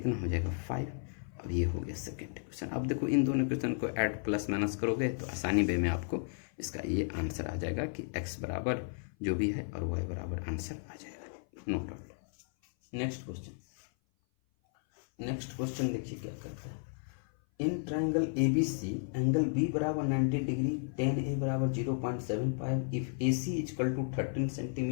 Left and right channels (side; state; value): right; silent; 55 dB below the other